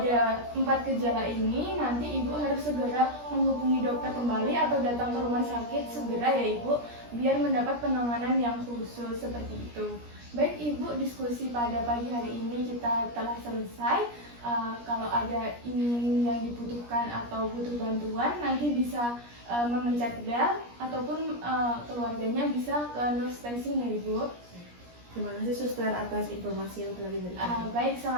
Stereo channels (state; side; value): late; left; 17 ms